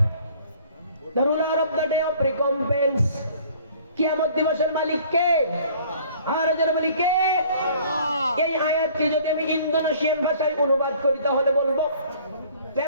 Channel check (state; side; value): inverted; both; correlation -0.54